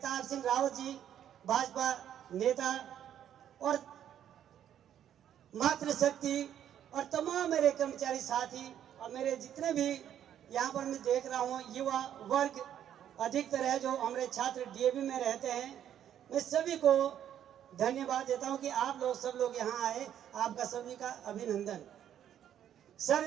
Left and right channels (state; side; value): quieter; left; 10.2 dB